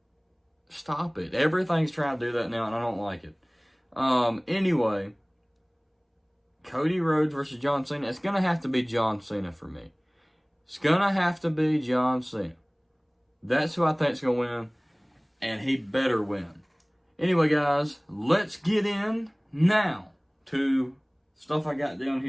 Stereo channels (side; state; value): both; identical; correlation 1.00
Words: Stop it. Everything's trying to do that now, and I don't like it. Anyway, Cody Rhodes versus John Cena. It's going to have to be John Cena for me. It's going to have to be John Cena. That's who I think is going to win, and he better win. Anyway, guys, let's get in now to stuff I got down